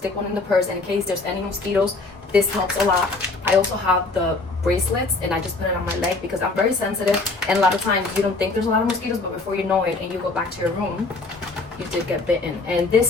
one in the purse, and in case there's any mosquitoes, this helps a lot. I also have the bracelets, and I just put it on my leg because I'm very sensitive, and a lot of times you don't think there's a lot of mosquitoes, but before you know it and you go back to your room, you did get bitten. And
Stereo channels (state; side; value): quieter; right; 3.5 dB